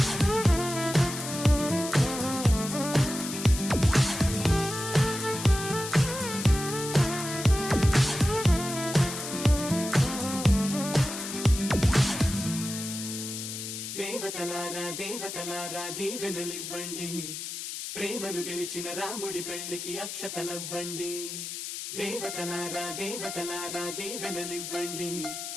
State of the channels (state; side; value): noise; left; hiss, 7 dB below the sound